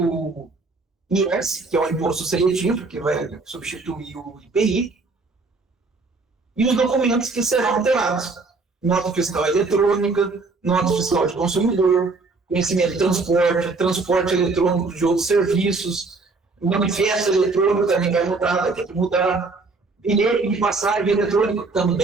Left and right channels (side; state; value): left; quieter; 3.8 dB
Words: IS, que é o imposto seletivo, que vai substituir o IPI, e os documentos que serão alterados. Nota fiscal eletrônica, nota fiscal de consumidor, conhecimento de transporte eletrônico de outros serviços, manifesto eletrônico também vai mudar, vai ter que mudar, bilhete de passagem eletrônico